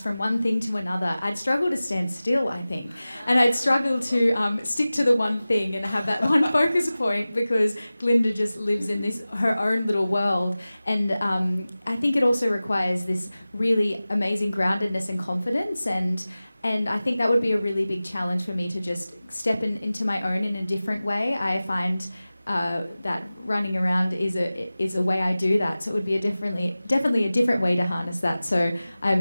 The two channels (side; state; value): both; inverted; correlation -0.97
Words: from one thing to another. I'd struggle to stand still, I think. And I'd struggle to stick to the one thing and have that one focus point because Glinda just lives in her own little world. And I think it also requires this really amazing groundedness and confidence. And I think that would be a really big challenge for me to just step into my own in a different way. I find that running around is a way I do that. So it would be definitely a different way to harness that. So